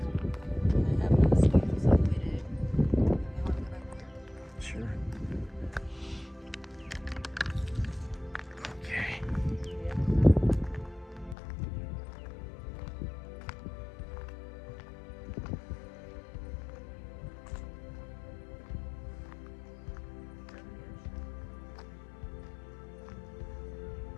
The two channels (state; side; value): drops out; right; at 11.4 s